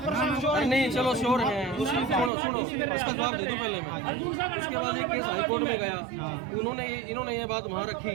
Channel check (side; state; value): left; drops out; at 2.3 s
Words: श्योर अरे नहीं चलो श्योर हैं। सुनो उसका जवाब दे दूं पहले मैं। उसके बाद एक केस हाई कोर्ट में गया, इन्होंने ये बात वहाँ